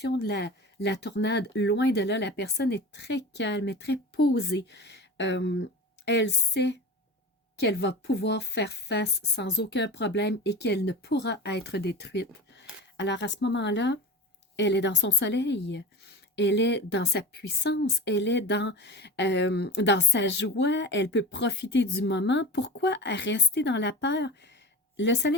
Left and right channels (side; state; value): both; normal; correlation 0.31